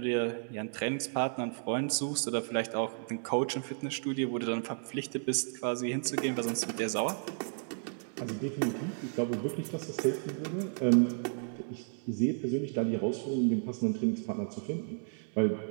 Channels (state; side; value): silent; left; digital silence